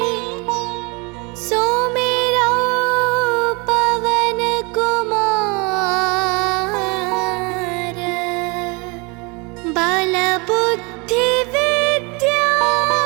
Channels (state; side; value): quieter; left; 29.2 dB